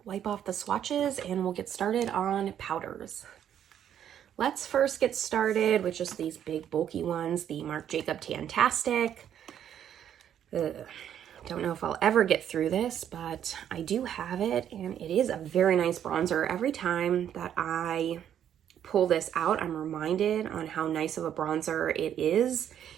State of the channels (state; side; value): quieter; left; 9.8 dB